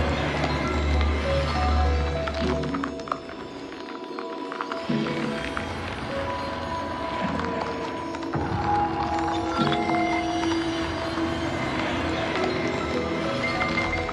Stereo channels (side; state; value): both; identical; correlation 1.00